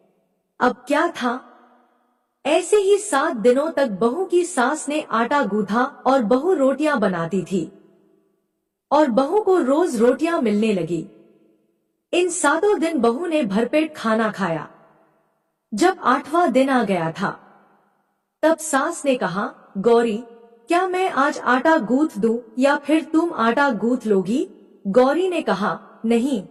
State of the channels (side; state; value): both; identical; correlation 1.00